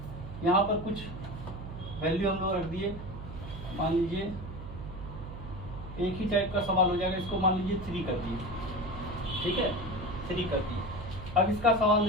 यहाँ पर कुछ वैल्यू हम लोग रख दिए, मान लीजिए एक ही टाइप का सवाल हो जाएगा, इसको मान लीजिए 3 कर दिए, ठीक है, 3 कर दिए। अब इसका सवाल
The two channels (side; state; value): right; noise; hum, 11 dB below the sound